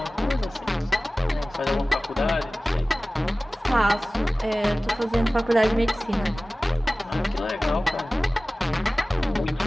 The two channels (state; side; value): normal; both; correlation 0.97